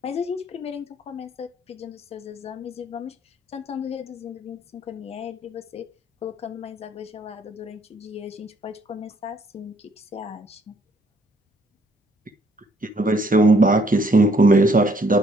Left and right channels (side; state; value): both; normal; correlation 0.65